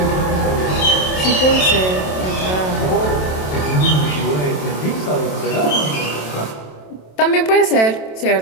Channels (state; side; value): late; right; 27 ms